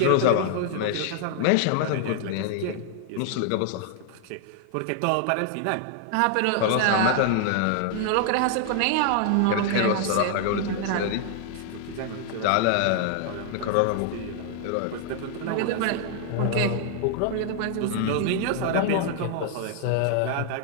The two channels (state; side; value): different; both; correlation 0.00